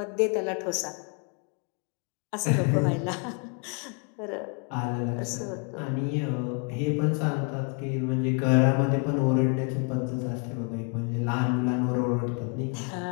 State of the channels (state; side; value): quieter; right; 36.5 dB